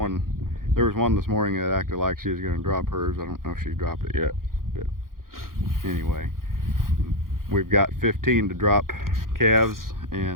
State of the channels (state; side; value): late; left; 0.91 ms